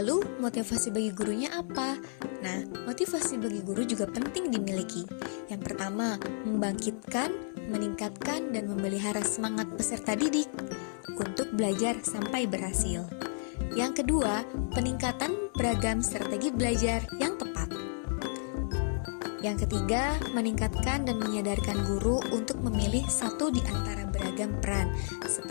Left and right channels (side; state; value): right; silent; 57 dB below the other